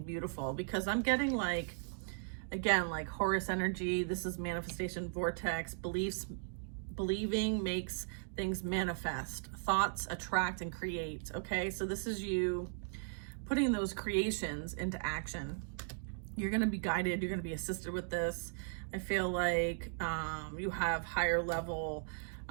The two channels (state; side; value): silent; left; digital silence